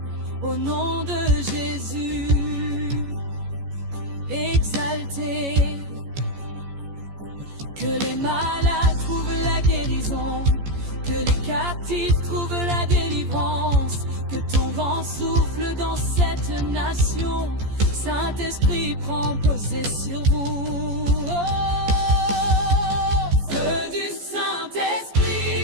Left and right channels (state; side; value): late; left; 14 ms